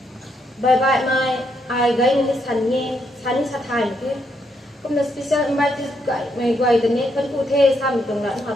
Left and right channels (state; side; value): normal; both; correlation 0.77